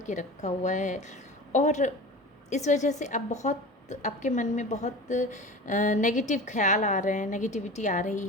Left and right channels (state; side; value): normal; both; correlation 0.34